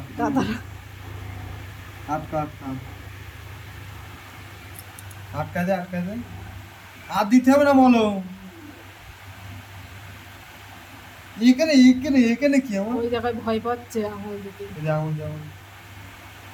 দাদা। আর দিতে হবে না মলম। এখানে এখানে এখানে কি আমার ওই জায়গায় ভয় পাচ্ছে আঙুল দিতে। যেমন যেমন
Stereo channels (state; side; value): identical; both; correlation 1.00